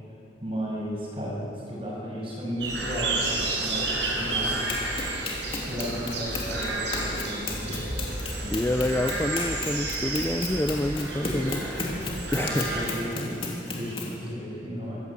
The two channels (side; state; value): both; normal; correlation 0.50